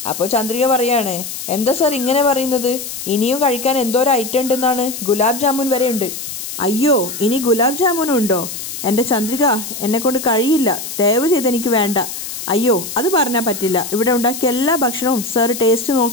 അപ്പോൾ ചന്ദ്രിക പറയാണ്, എന്താ സാർ ഇങ്ങനെ പറയുന്നത്? ഇനിയും കഴിക്കാൻ എന്തോരം ഐറ്റം ഉണ്ടെന്നാണ്, ഗുലാബ് ജാമുൻ വരെ ഉണ്ട്. അയ്യോ, ഇനി ഗുലാബ് ജാമുനും ഉണ്ടോ? എൻ്റെ ചന്ദ്രിക, എന്നെക്കൊണ്ട് കഴിയില്ല, ദയവ് ചെയ്ത് എനിക്ക് വേണ്ട. അയ്യോ, അത് പറഞ്ഞാൽ പറ്റില്ല, ഇവിടെ ഉണ്ടാക്കിയ എല്ലാ ഭക്ഷണവും സാർ ടേസ്റ്റ്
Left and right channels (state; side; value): noise; left; hiss, 8 dB below the sound